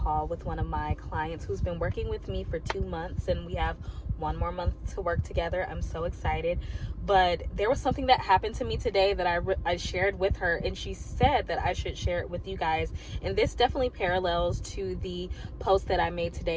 with one of my clients who's been working with me for 2 months, and we have one more month to work together. I'm so excited. But there was something that happened to me today that I shared with her, and she said that I should share it with you guys. And this definitely parallels to the post that I made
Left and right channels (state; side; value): identical; both; correlation 1.00